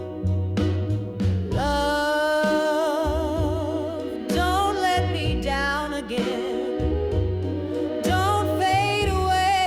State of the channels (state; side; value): identical; both; correlation 1.00